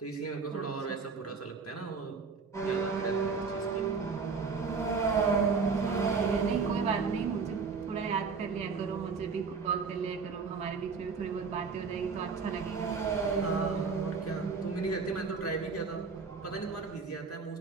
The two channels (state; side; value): quieter; left; 5.0 dB